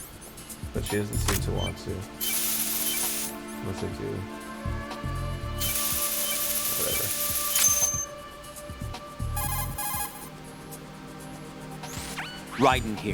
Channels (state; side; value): identical; both; correlation 1.00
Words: But she doesn't seem to want to. Unless I do. Whatever. Ryden